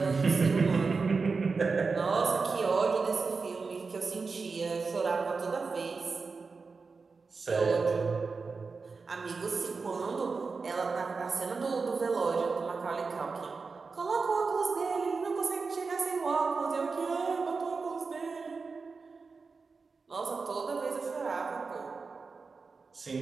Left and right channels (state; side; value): quieter; left; 4.5 dB